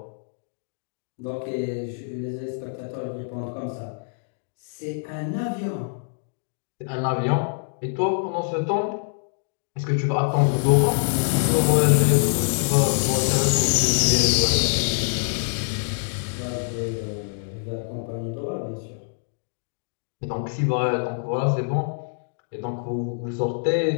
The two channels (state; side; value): silent; right; digital silence